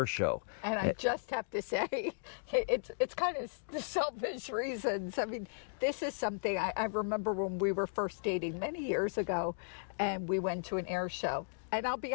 Show. And I just have to say, it's kind of the selfish reasons. I mean, this is something I remember when we were first dating many years ago, and we went to an air show. And I'll be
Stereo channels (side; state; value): right; silent; digital silence